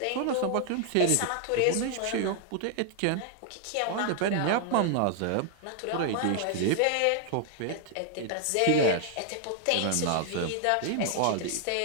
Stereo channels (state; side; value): different; both; correlation 0.00